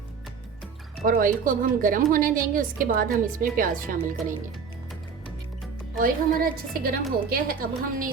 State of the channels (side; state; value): left; quieter; 5.9 dB